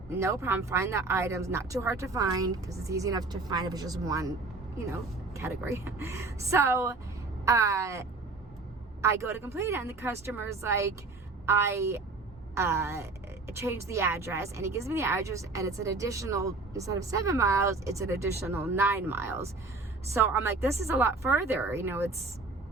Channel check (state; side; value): quieter; left; 3.6 dB